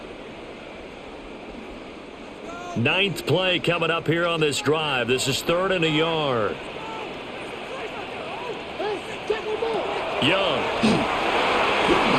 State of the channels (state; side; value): identical; both; correlation 1.00